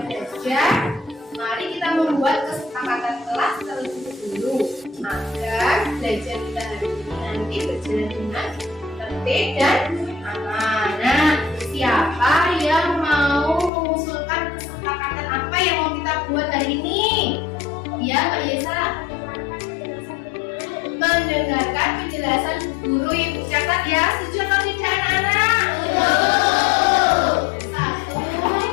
belajar, mari kita membuat kesepakatan kelas terlebih dahulu agar belajar kita hari ini nanti berjalan dengan tertib dan aman. Nah, siapa yang mau mengusulkan kesepakatan apa yang mau kita buat hari ini? Ya, Mbak Yesa. Mendengarkan penjelasan guru yang catat ya. Setuju atau tidak anak-anak? Satu,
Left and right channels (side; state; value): right; drops out; at 13.7 s